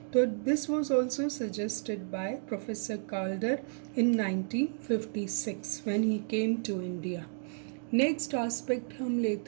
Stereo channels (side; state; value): left; silent; digital silence